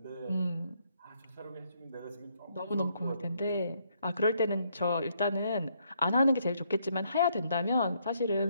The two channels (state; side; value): inverted; both; correlation -0.73